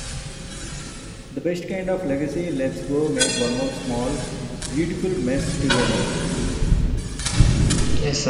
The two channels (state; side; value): identical; both; correlation 1.00